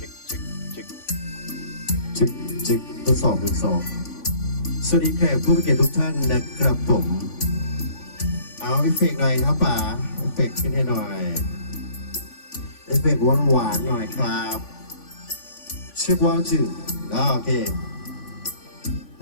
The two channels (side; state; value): right; late; 3.5 ms